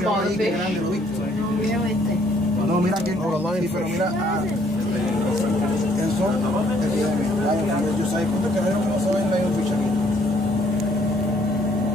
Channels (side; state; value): both; normal; correlation 0.65